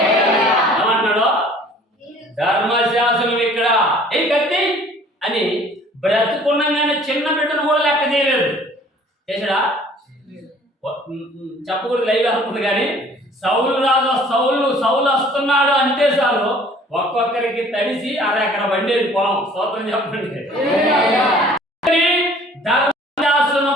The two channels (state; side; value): normal; both; correlation 0.53